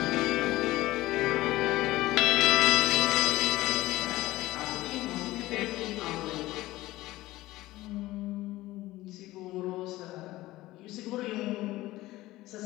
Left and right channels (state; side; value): quieter; right; 17.5 dB